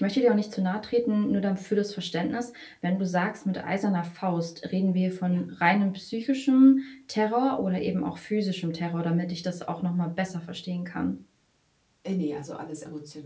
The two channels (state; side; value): identical; both; correlation 1.00